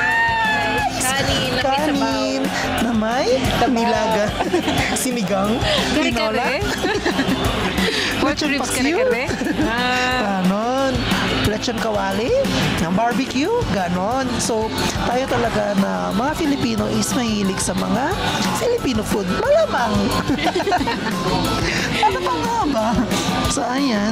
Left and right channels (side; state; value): both; identical; correlation 1.00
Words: kanin na may nilaga, sinigang, tinola, Pork lechon ribs paksiw, kare-kare. ganon, lechon kawali, ng barbecue, ganon. So, tayo talaga na mga Filipino is mahilig sa mga Filipino food. Malamang. Ano pa nga ba? So,